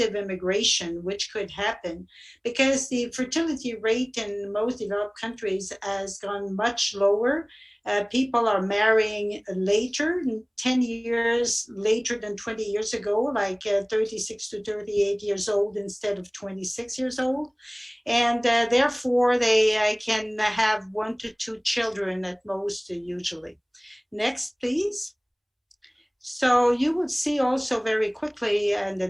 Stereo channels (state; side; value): identical; both; correlation 1.00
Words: immigration, which could happen, because the fertility rate in most developed countries has gone much lower. People are marrying later, 10 years later than 20 years ago, like 36 to 38 years old instead of 26 years old. And therefore, they can have 1 to 2 children at most, usually. Next, please. So you will see also very quickly in the